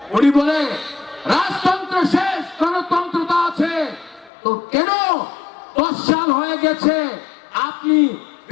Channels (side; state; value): right; drops out; at 4.3 s